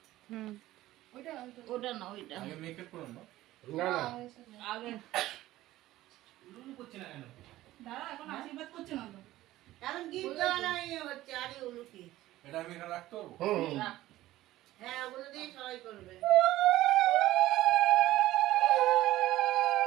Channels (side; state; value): left; quieter; 15.8 dB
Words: ওইটা ওটা না ওইটা আগে মেকআপ করুন না না না আগে লুলু করছে না কেন দাঁড়া এখন আশীর্বাদ করছে না তো এখন গিফট দেওয়া নাই হচ্ছে আরে উলুকি। এটা আমি এখানে রাখতে পারবো রাখ। হ্যাঁ ওগুলো দিয়ে সবাই করবে।